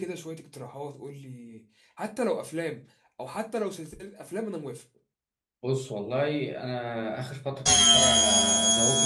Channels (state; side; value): identical; both; correlation 1.00